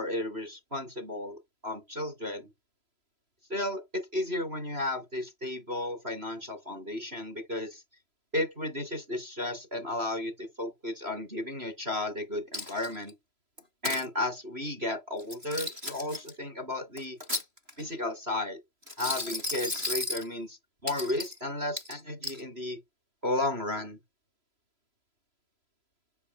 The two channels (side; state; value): left; late; 3.0 ms